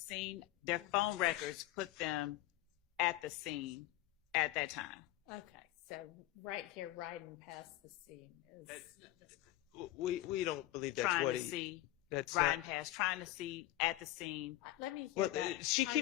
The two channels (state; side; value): quieter; right; 15.7 dB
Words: their phone records put them at the scene at that time. Okay, so right here, riding past the scene is. We don't believe that's trying what to he. see, That's riding past, trying to see at the scene. Let me hear Well, that. she